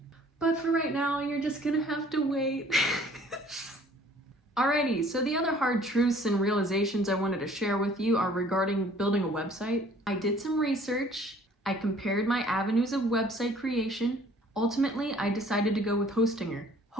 But for right now, you're just gonna have to wait. Alrighty, so the other hard truths and realizations I wanted to share with you are regarding building a website. I did some research. I compared my avenues of website creation. Ultimately, I decided to go with Hostinger.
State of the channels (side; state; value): both; normal; correlation 0.55